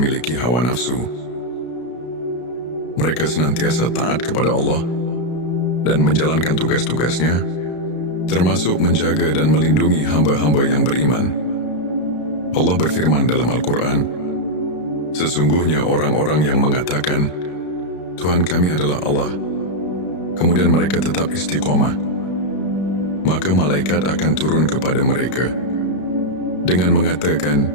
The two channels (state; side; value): late; right; 33 ms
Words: hawa nafsu. Mereka senantiasa taat kepada Allah dan menjalankan tugas-tugasnya, termasuk menjaga dan melindungi hamba-hamba yang beriman. Allah berfirman dalam Al-Quran, sesungguhnya orang-orang yang mengatakan, Tuhan kami adalah Allah, kemudian mereka tetap istiqomah, maka malaikat akan turun kepada mereka dengan mengatakan,